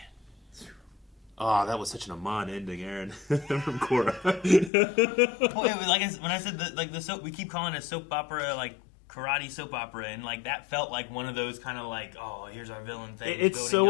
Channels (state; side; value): drops out; right; at 4.7 s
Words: Oh, that was such an Amon ending, Aaron, from Korra. When I said the soap, we keep calling it a soap opera, like karate soap opera, and like that felt like one of those kind of like, oh, here's our villain thing. It's